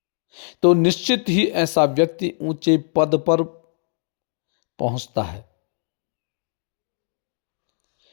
तो निश्चित ही ऐसा व्यक्ति ऊंचे पद पर पहुंचता है।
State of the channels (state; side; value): silent; right; digital silence